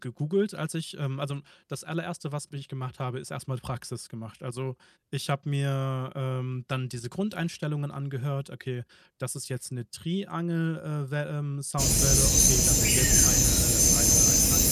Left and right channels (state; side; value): identical; both; correlation 1.00